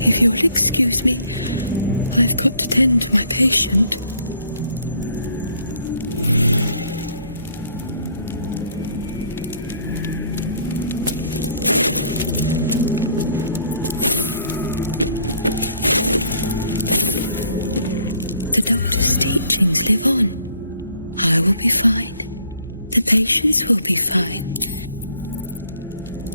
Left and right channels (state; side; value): inverted; both; correlation -0.62